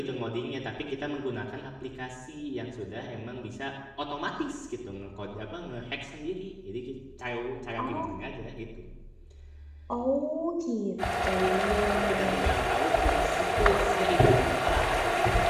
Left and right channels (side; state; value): both; identical; correlation 1.00